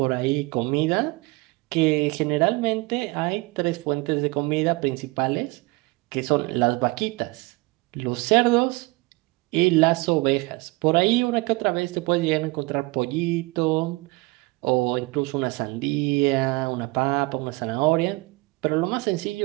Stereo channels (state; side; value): quieter; left; 24.2 dB